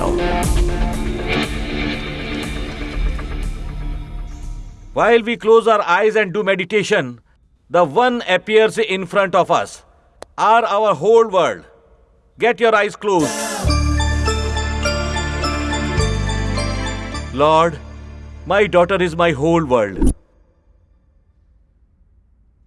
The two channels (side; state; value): both; identical; correlation 1.00